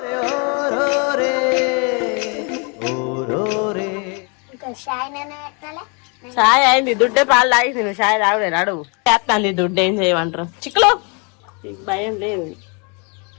చాయ్ అయింది, దుడ్డే పాలు తాగింది. నువ్వు చాయ్ తాగుడే రాడు చేస్తాను. దుడ్డు ఏం చేయమంటారు చిక్కులో భయం లేదు.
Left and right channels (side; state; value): right; quieter; 34.3 dB